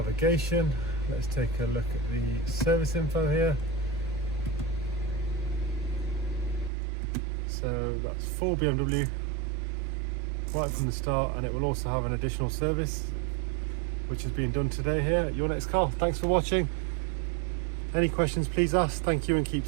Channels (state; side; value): drops out; left; at 6.7 s